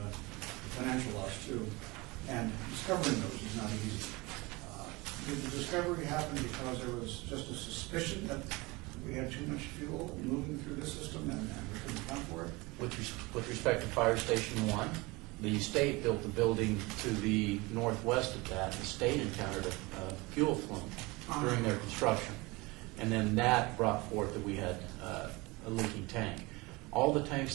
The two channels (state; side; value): quieter; left; 24.0 dB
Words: financial loss too, and discovering those is not easy. Did the discovery happen because there was just a suspicion that we had too much fuel moving through the system and we couldn't account for it? With respect to Fire Station 1, the state built the building to the northwest of that. The state encountered a fuel flume during their construction. And then that brought forth that we had a leaking tank. All the